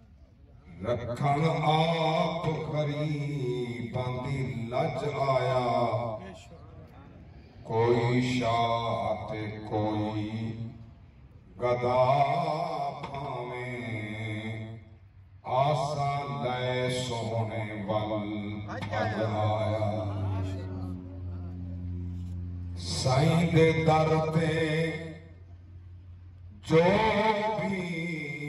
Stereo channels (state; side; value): identical; both; correlation 1.00